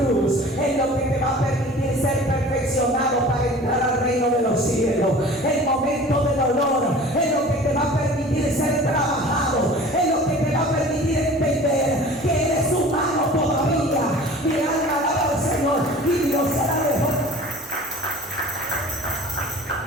es lo que te va a permitir ser perfeccionado para entrar al reino de los cielos. El momento de dolor es lo que te va a permitir ser trabajado, es lo que te va a permitir entender que eres humano todavía. Mi alma alaba al Señor, y Dios se la dejó.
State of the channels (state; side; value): normal; both; correlation 0.43